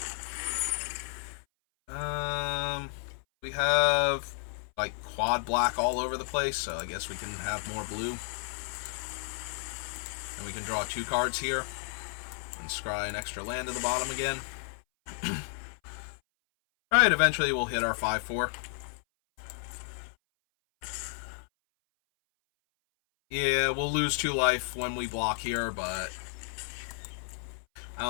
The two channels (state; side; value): silent; right; 57 dB below the other